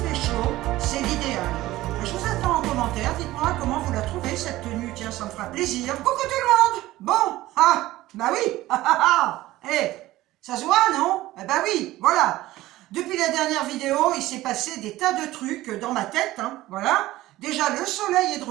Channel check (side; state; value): left; quieter; 16.7 dB